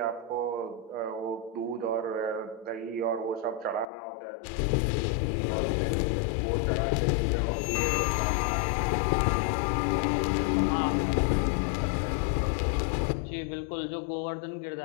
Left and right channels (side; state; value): right; drops out; at 3.9 s